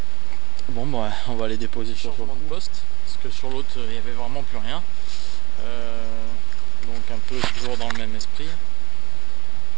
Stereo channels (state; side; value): quieter; left; 9.5 dB